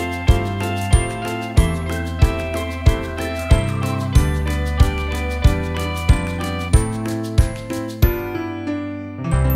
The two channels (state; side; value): identical; both; correlation 1.00